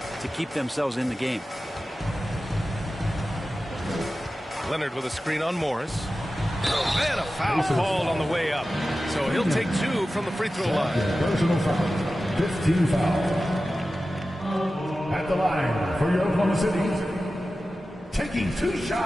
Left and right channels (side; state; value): both; normal; correlation 0.94